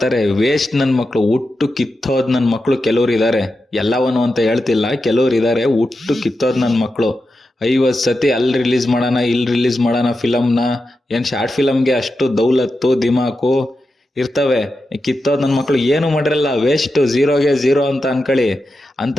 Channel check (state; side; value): normal; both; correlation 0.90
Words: ವೇಸ್ಟ್ ನನ್ನ ಮಕ್ಕಳು, ಹುಟ್ಟು ಕಿತ್ತೋದು ನನ್ನ ಮಕ್ಕಳು ಕೆಲವ್ರು ಇದ್ದಾರೆ. ಎಲ್ಲವನು ಅಂತ ಹೇಳ್ತಿಲ್ಲ, ಕೆಲವ್ರು ಇದ್ದಾರೆ ಹುಟ್ಟು ಕಿತ್ತೋದು ನನ್ನ ಮಕ್ಕಳು. 50 ಸತಿ ಅಲ್ಲಿ ರಿಲೀಸ್ ಮಾಡೋಣ ಇಲ್ಲಿ ರಿಲೀಸ್ ಮಾಡೋಣ ಫಿಲಮ್ನ. ಏನು ಶಾರ್ಟ್ ಫಿಲಮ್ಗೆ ಅಷ್ಟು ದೌಲತ್ತು ದಿಮಾಕು ಇರ್ತವೆ. ಕಿತ್ತೋದು ನನ್ನ ಮಕ್ಕಳು ಏನು ಮಾಡಿರಲ್ಲ, ವೇಸ್ಟ್, ಝೀರೋಗೆ ಝೀರೋ ಅಂತ ಅನ್ಕೊಳ್ಳಿ. ಅಂತ